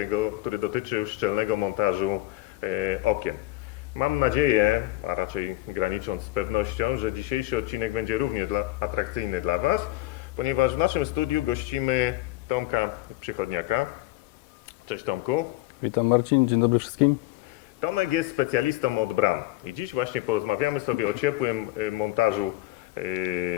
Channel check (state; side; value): quieter; right; 17.9 dB